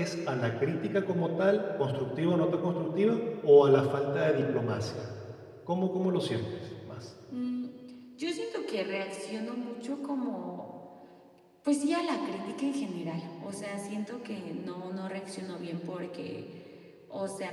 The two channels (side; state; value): both; identical; correlation 1.00